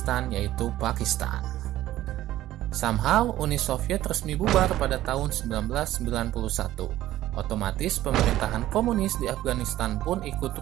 yaitu Pakistan. Somehow, Uni Soviet resmi bubar pada tahun 1991. Otomatis pemerintahan komunis di Afghanistan pun ikut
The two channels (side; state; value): left; quieter; 14.4 dB